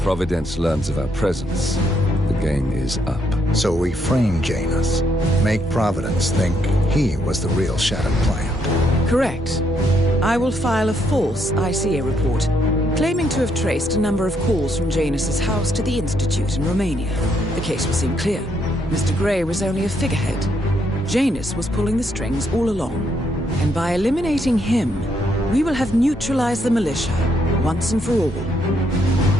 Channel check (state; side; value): normal; both; correlation 0.74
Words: Providence learns of our presence, the game is up. So we frame Janus, make Providence think he was the real Shattered Plant. Correct. I will file a false ICA report, claiming to have traced a number of calls from Janus's house to the Institute in Romania. The case will seem clear. Mr. Gray was only a figurehead. Janus was pulling the strings all along. And by eliminating him, we will have neutralized the militia, once and for all.